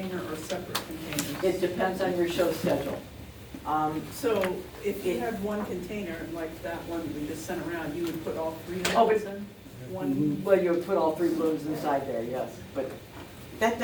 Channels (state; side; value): identical; both; correlation 1.00